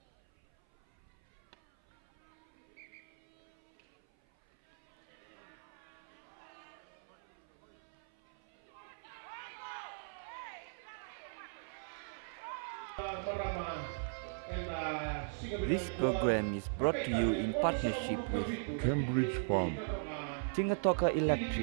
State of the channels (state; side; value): silent; left; 52 dB below the other